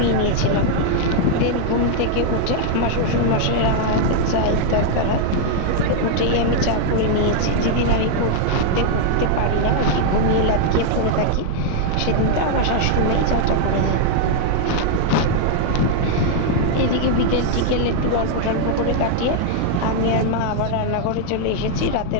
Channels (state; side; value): different; both; correlation 0.00